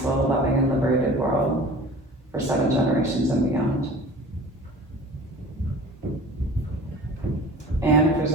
loving, and liberated world for 7 generations and beyond. And if there's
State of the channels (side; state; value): both; normal; correlation 0.41